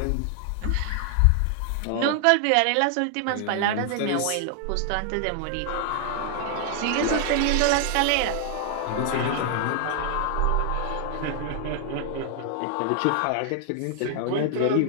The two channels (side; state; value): both; different; correlation 0.00